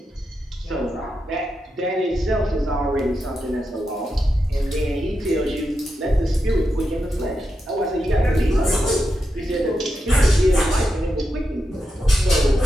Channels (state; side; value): normal; both; correlation 0.87